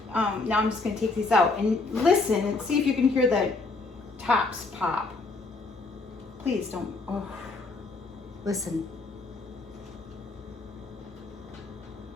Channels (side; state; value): right; quieter; 3.6 dB